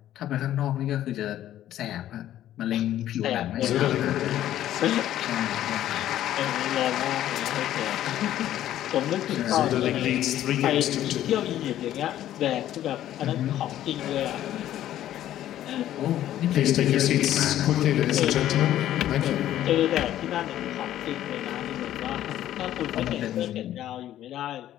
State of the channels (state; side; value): quieter; right; 12.5 dB